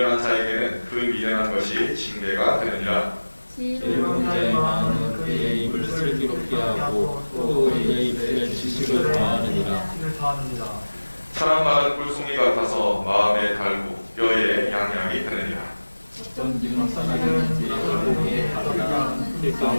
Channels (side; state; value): both; inverted; correlation -1.00